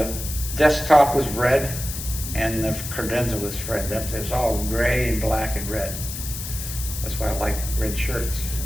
desktop was red, and the credenza was red. It was all gray and black and red. That's why I like red shirts.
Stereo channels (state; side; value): noise; left; hiss, 7 dB below the sound